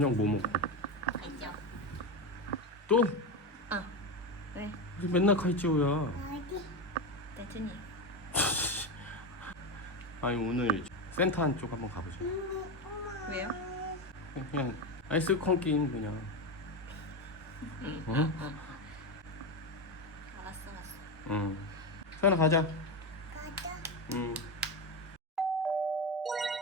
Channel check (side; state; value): both; normal; correlation 0.15